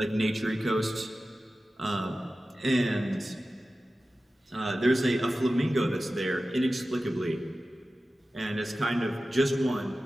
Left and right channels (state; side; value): normal; both; correlation 0.95